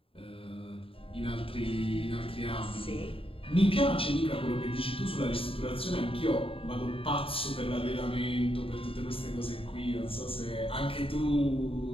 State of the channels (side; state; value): right; late; 0.27 ms